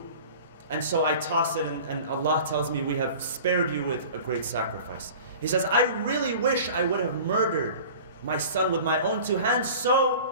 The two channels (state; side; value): inverted; both; correlation -0.41